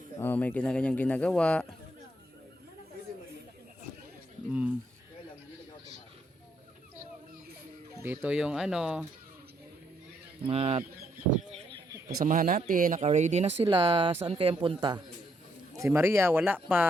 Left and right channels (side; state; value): both; normal; correlation 0.74